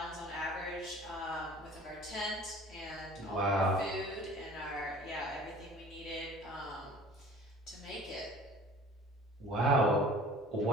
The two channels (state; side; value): normal; both; correlation 0.47